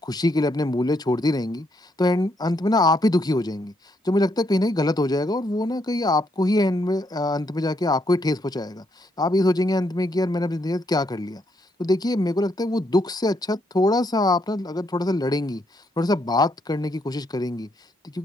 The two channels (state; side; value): normal; both; correlation 0.75